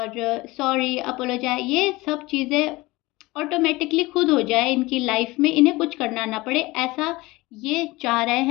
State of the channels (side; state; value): right; quieter; 21.2 dB